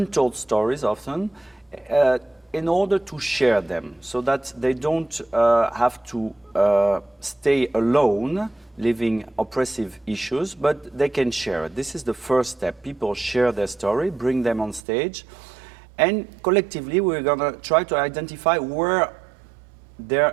stories often, in order to share them, so that they don't have to stay alone living oppressive issues, but they can share it. This is the first step. People share their story, bring them on stage, and collectively we're going to try to identify where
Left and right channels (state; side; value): drops out; left; at 14.8 s